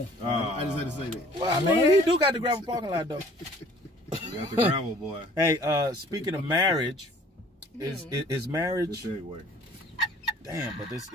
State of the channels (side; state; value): both; normal; correlation 0.53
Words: just had to say that. Well, I mean, he do got the gravel parking lot though. You got the gravel, boy. Hey, speaking of marriage, is Good marriage? segue. Damn, but this